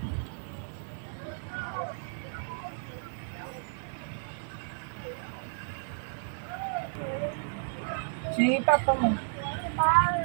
Si Papa mo.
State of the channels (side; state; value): left; silent; digital silence